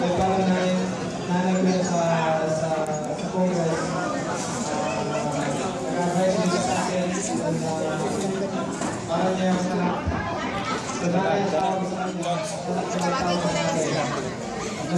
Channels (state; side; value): identical; both; correlation 1.00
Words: nagkaroon na yung nanay ko sa Congress. Nag-advise niya sa akin para niya yung anak. Nagkakain sa ako sa kanya.